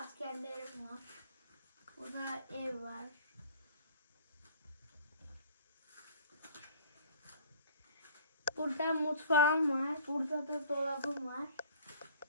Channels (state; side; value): inverted; both; correlation -0.49